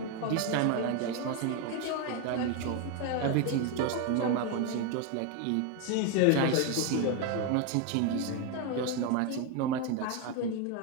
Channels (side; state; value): both; different; correlation 0.02